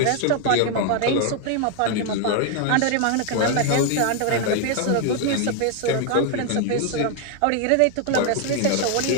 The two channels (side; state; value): both; different; correlation 0.00